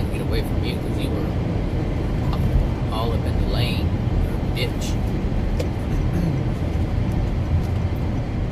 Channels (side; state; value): both; identical; correlation 1.00